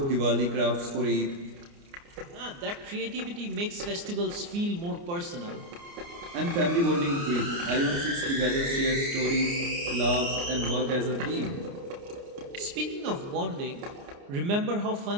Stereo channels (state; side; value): late; left; 29 ms